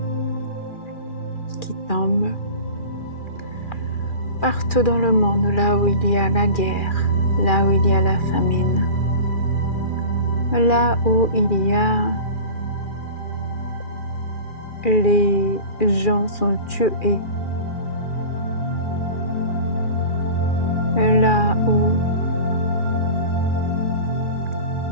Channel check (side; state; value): right; late; 2.4 ms